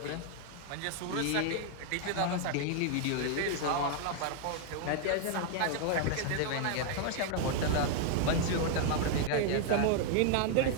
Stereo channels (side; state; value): both; different; correlation 0.00